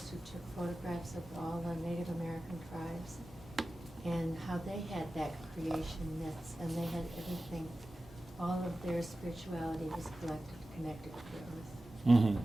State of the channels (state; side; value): normal; both; correlation 0.95